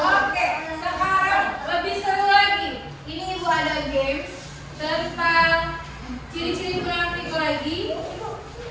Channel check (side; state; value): both; identical; correlation 1.00